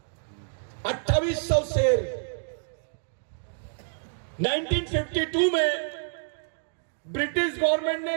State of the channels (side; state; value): left; silent; digital silence